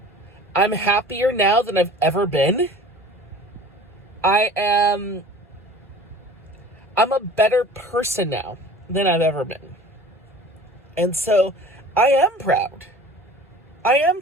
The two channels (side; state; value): both; normal; correlation 0.44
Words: I'm happier now than I've ever been. I'm a better person now than I've ever been. And so I am proud. I am